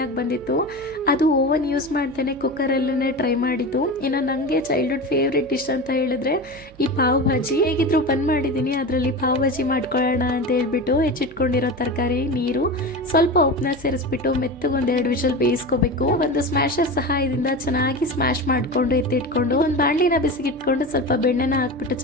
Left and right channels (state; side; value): noise; right; hum, 23 dB below the sound